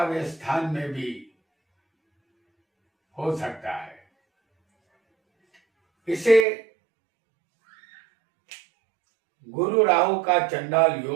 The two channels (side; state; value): left; drops out; at 6.5 s